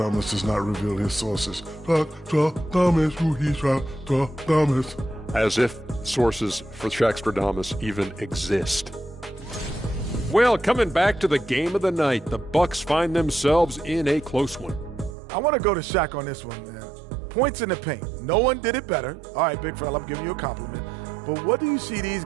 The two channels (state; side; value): drops out; left; at 15.2 s